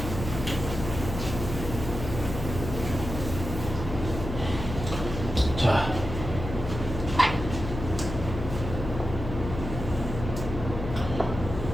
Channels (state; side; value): noise; left; hum, 7 dB below the sound